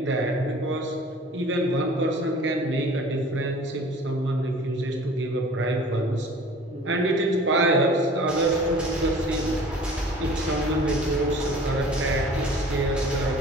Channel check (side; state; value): both; normal; correlation 0.46